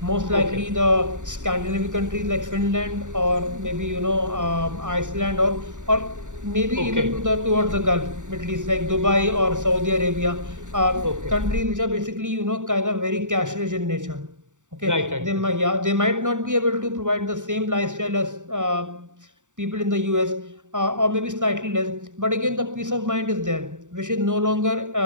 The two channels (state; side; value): late; left; 0.86 ms